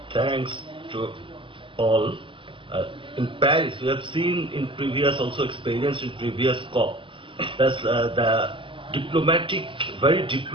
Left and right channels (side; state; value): left; late; 0.25 ms